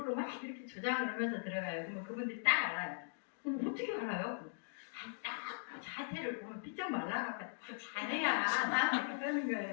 막 이렇게 조장을 하면서 들어가요. 그러면 그분들이 딱 알아요. 그럼 어떻게 알아요? 딱 자태를 보면 삐쩍 말라갖고 잘해야 나한테 그러는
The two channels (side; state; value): right; silent; digital silence